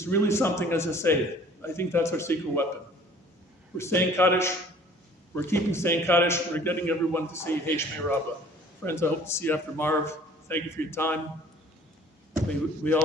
really something, as I say. I think that's our secret weapon. We're saying Kaddish, we're keeping saying Kaddish, we're getting everyone to say Yehi Shmei Rabbah. Friends, I hope to see you after Marv. Thank you for your time. We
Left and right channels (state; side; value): normal; both; correlation 0.52